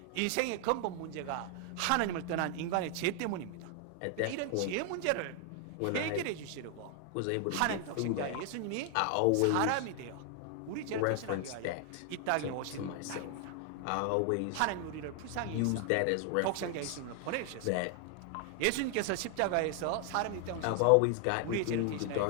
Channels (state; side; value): different; both; correlation 0.00